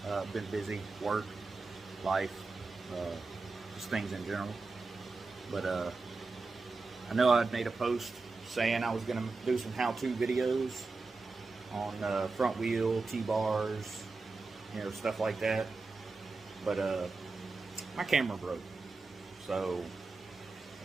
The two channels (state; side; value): quieter; left; 3.8 dB